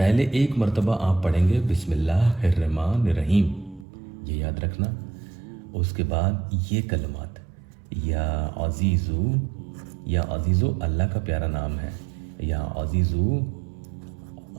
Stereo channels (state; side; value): drops out; left; at 3.9 s